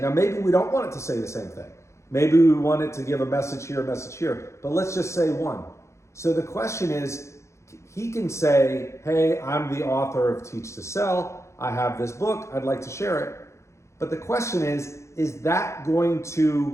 Now, maybe we don't want it to say the same thing. Maybe we want it to give a message here, but let's just say one. So the question is, he can say, hey, I'm the author of Teach to Sell. I have this book. I'd like to share it. But the question is that going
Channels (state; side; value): late; right; 0.14 ms